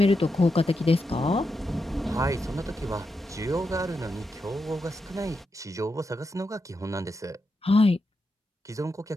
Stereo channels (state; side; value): normal; both; correlation 0.86